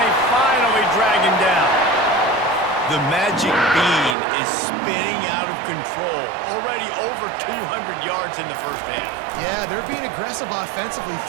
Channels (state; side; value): drops out; left; at 4.2 s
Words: finally drag him down. The magic bean is spinning out of control. Already over 200 yards in the first half. Yeah, they're being aggressive offensively,